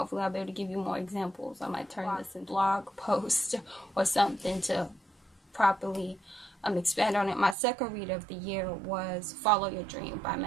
I'll be able to give you more examples. I might turn this into a blog post or something to properly expand on it. My second read of the year was Follow Your Dream by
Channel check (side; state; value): left; drops out; at 7.6 s